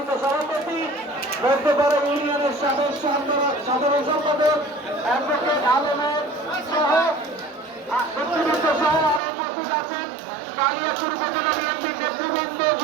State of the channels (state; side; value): drops out; left; at 9.2 s